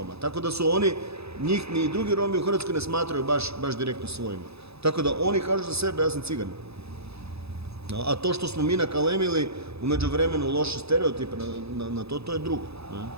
Tako da su oni, njih ni drugi Romi u Hrvatskoj ne smatraju baš direktno svojima. Tako da oni kažu za sebe, ja sam cigan. A to što smo mi nakalemili u međuvremenu loše stereotipe na to, to je drugo. Ne?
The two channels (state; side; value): late; left; 0.79 ms